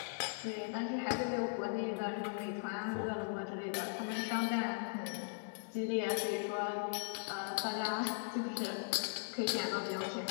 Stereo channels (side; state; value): right; silent; digital silence